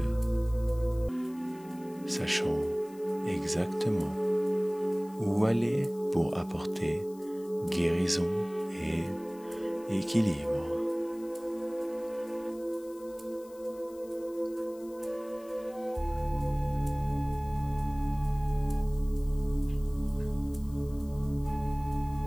sachant exactement où aller pour apporter guérison et équilibre.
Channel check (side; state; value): left; noise; hiss, 25 dB below the sound